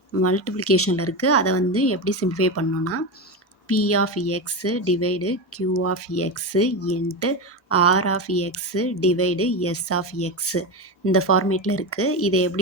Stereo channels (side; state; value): both; normal; correlation 0.17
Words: மல்டிப்ளிகேஷனில் இருக்குது. அதை வந்து எப்படி சிம்பிளிஃபை பண்ணணும்னா P of x divide Q of x into R of x divide S of x இந்த ஃபார்மேட்டில் இருக்குது. இதை